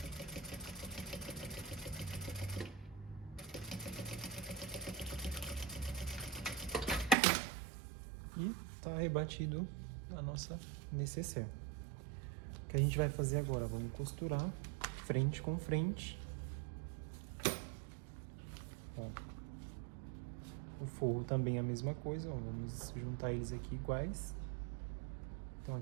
E tá rebatido a nossa nécessaire. O que a gente vai fazer agora? Vamos costurar frente com frente. O forro também é a mesma coisa, vamos juntar eles aqui iguais. Então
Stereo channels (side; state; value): left; drops out; at 7.2 s